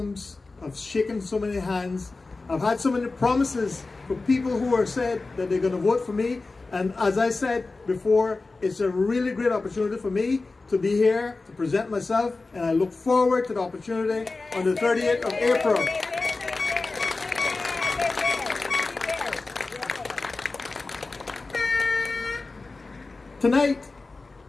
I've shaken so many hands, I've had so many promises for people who are said that they're going to vote for me. And as I said before, it's a really great opportunity for me to be here, to present myself, and I look forward to the opportunity on the 30th of April. Tonight,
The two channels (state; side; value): quieter; right; 3.6 dB